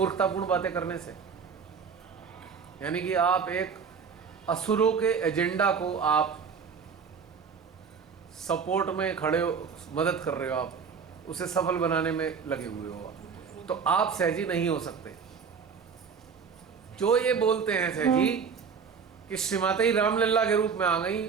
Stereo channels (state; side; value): quieter; left; 6.1 dB